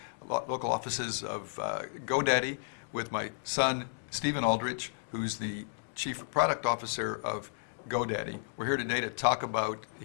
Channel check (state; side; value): silent; right; digital silence